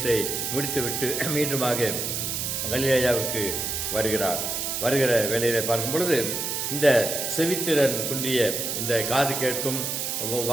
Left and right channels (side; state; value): right; noise; hiss, 2 dB below the sound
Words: முடித்துவிட்டு மீண்டுமாக கலிலேயாவுக்கு வருகிறார். வருகிற வேளையிலே பார்க்கும் பொழுது இந்த செவித்திறன் குன்றிய, இந்த காது கேட்கும்